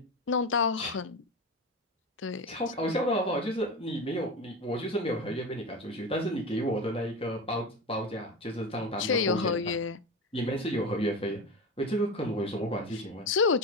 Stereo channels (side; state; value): both; normal; correlation 0.23